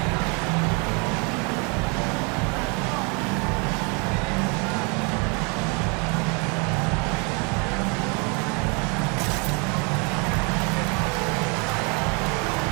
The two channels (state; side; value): quieter; left; 32.9 dB